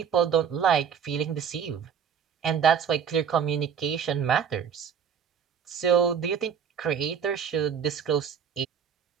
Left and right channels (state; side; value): quieter; left; 7.6 dB